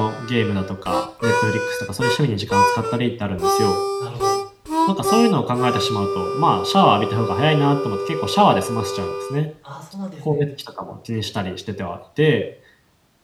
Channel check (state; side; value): identical; both; correlation 1.00